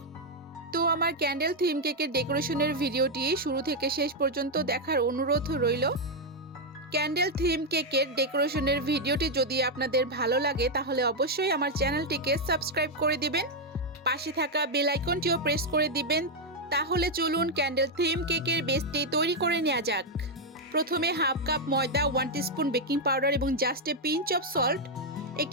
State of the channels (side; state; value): both; normal; correlation 0.01